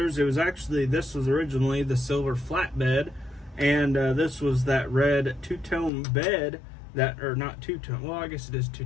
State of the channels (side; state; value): right; drops out; at 5.9 s